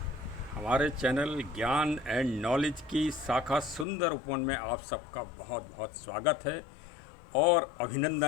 हमारे चैनल ज्ञान एंड नॉलेज की शाखा सुंदर उपवन में आप सबका बहुत बहुत स्वागत है और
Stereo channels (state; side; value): drops out; right; at 3.9 s